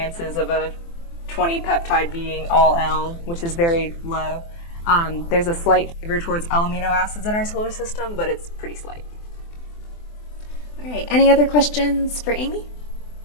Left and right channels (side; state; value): right; late; 24 ms